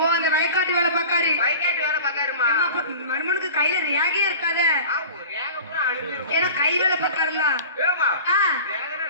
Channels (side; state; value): both; inverted; correlation -0.38